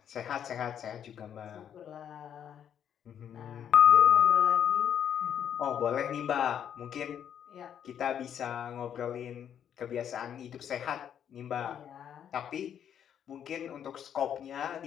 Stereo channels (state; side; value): quieter; right; 9.1 dB